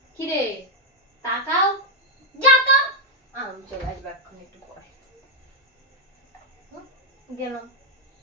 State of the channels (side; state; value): both; normal; correlation 0.01